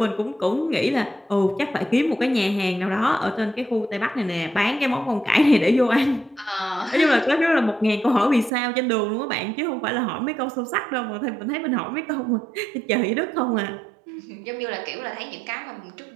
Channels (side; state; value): left; drops out; at 8.5 s